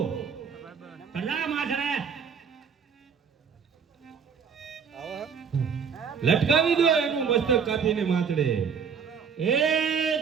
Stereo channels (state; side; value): quieter; left; 6.6 dB